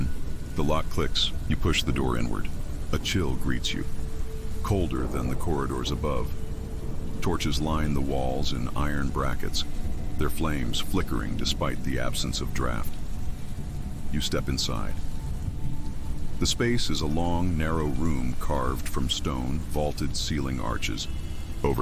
the lock clicks, you push the door inward. A chill greets you, colder than the corridors above. Torches line the walls in iron brackets, their flames flickering despite the absence of draft. You step inside. The space is a long, narrow room carved from stone, vaulted ceiling arches.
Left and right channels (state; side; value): identical; both; correlation 1.00